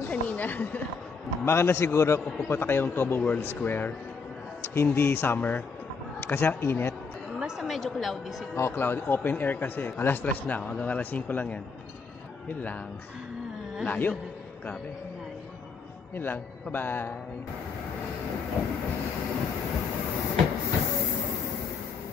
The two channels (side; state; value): right; quieter; 5.0 dB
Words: kanina. Baka na siguro kung pupunta kayong Tabo World Square, hindi summer. Kasi ang init. Basta medyo cloudy siguro. Oh, cloudy. Open air kasi. Alas 3 na. Hanggang alas 5 lang yan. Yun lang. Layo. Grabe. Layo. Yun lang. Bye-bye.